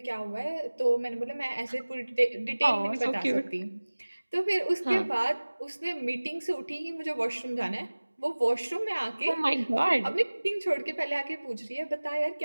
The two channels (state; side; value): inverted; both; correlation -1.00